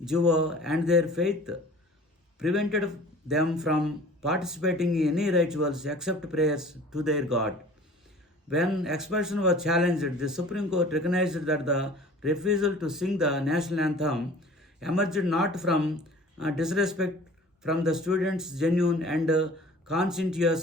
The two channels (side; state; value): both; normal; correlation 0.46